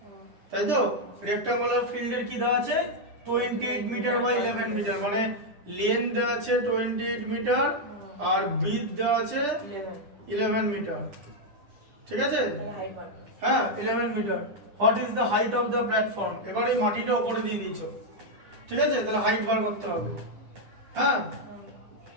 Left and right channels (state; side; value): late; left; 9.9 ms